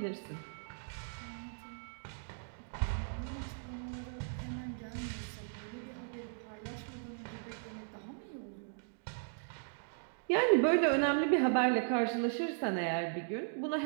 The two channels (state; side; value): silent; left; digital silence